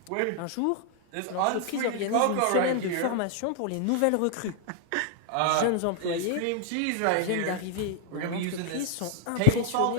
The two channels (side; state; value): both; different; correlation 0.00